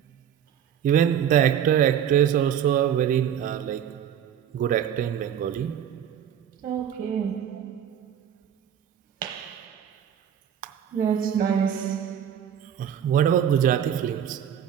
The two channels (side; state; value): left; quieter; 9.3 dB